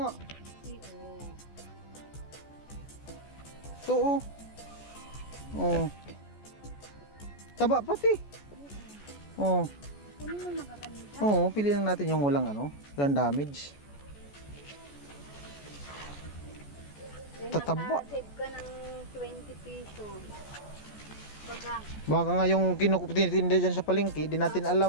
Ito oh. Oh. Taba pati. Oh. Oo, piliin natin yung walang ano, walang damage. Tataba. Save ka ng 20 pesos. Baka nga yung tinitinda dyan sa palengke, di natin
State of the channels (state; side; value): late; right; 14 ms